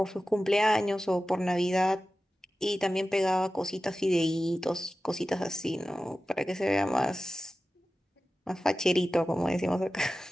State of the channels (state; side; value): normal; both; correlation 0.95